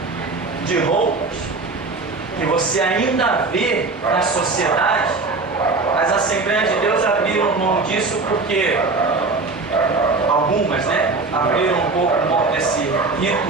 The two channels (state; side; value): quieter; left; 3.8 dB